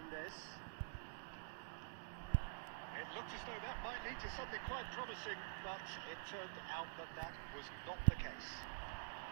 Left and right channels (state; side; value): silent; left; digital silence